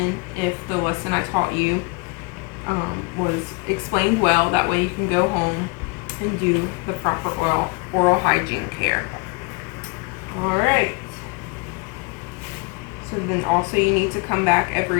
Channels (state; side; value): quieter; right; 28.2 dB